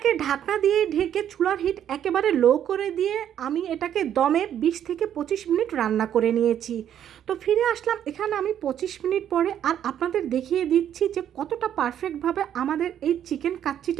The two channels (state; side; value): quieter; left; 10.0 dB